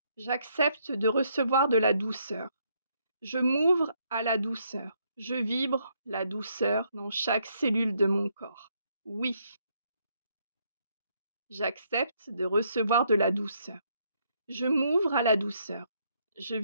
J'accepte de recevoir de la douceur. Je m'ouvre à la douceur. Je vibre la douceur dans chaque cellule de mon corps. Oui. J'accepte de recevoir de la douceur. Je m'ouvre à la douceur. Je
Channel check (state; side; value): inverted; both; correlation -0.72